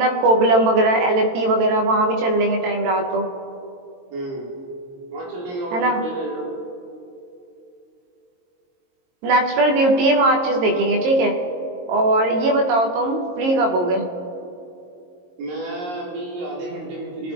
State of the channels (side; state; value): left; late; 22 ms